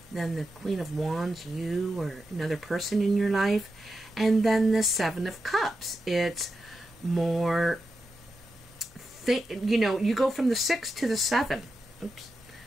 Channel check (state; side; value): normal; both; correlation 0.89